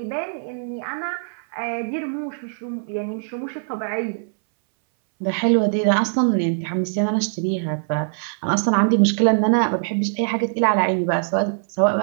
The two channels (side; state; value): left; silent; 64 dB below the other